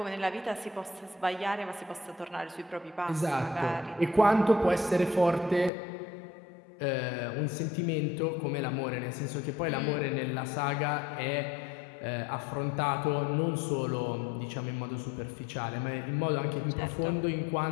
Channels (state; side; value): drops out; right; at 5.7 s